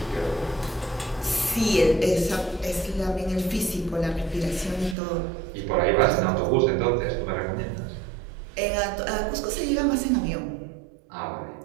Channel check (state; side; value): drops out; left; at 5.0 s